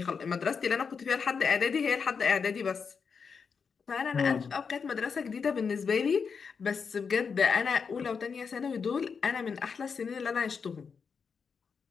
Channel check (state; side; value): quieter; right; 5.8 dB